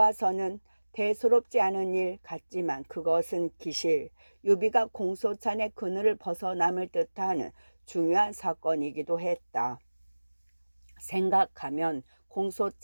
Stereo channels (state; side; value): inverted; both; correlation -1.00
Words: 대수롭지 않은 일 같지만 그것은 기실 유비가 공소찬의 그늘을 벗어남을 뜻하는 중요한 사건이기도 했다. 생각하면